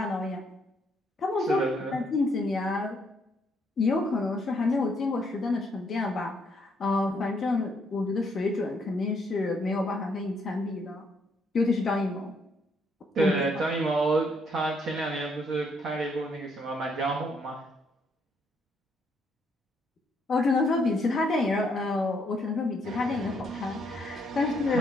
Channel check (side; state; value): both; normal; correlation 0.71